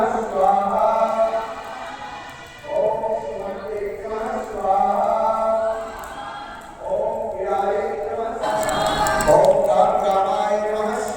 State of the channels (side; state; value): both; identical; correlation 1.00